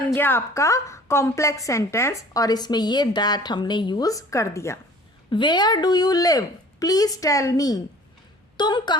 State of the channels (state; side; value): normal; both; correlation 0.48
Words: गया आपका कॉम्प्लेक्स सेंटेंस और इसमें ये दैट हमने यूज कर दिया। Where do you live, please tell me, तुम